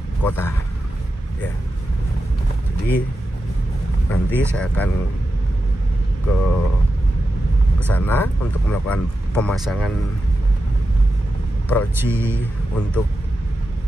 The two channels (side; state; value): both; normal; correlation 0.90